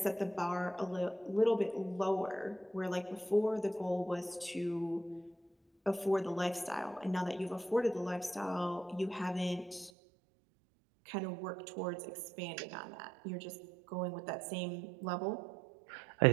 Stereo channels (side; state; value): left; drops out; at 9.9 s